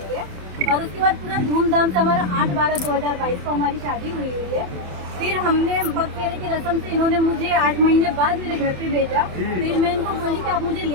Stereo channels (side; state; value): left; late; 27 ms